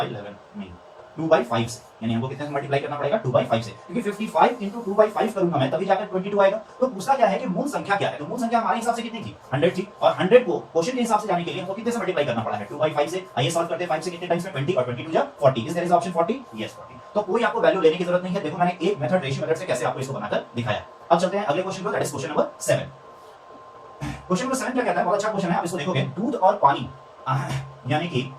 नहीं 2/5 से, यानी हमको कितने से मल्टीप्लाई करना पड़ेगा 2/5 से, क्योंकि 55 into 2/5 करूंगा मैं तभी जाकर 22 आएगा। तो पूछता क्या है कि मूल संख्या क्या है, तो मूल संख्या हमारे हिसाब से कितनी थी 100 थी, और 100 को क्वेश्चन के हिसाब से जाने के लिए हमको कितने से मल्टीप्लाई करना पड़ा है 2/5 से। आइए सॉल्व करते हैं 5 से कितने टाइम्स में 20 और 22 जा 40, is there is option 40, yes 40। तो कोई आपको वैल्यू लेने की जरूरत नहीं है। देखो मैंने एक मेथड रेशियो मेथड से कैसे आपको इसको बनाकर दिखाया। अब चलते हैं अगले क्वेश्चन को, that is question number 7। Question number 7 क्या कहता है, बहुत अच्छा क्वेश्चन है। आप इसको देखोगे दूध और पानी यानी कि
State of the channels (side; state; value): both; identical; correlation 1.00